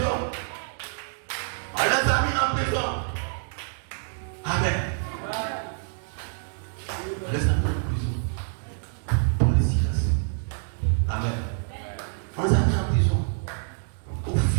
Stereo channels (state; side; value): silent; left; digital silence